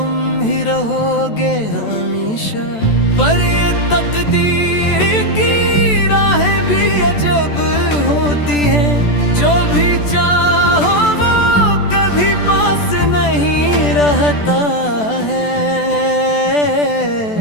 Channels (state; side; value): late; right; 14 ms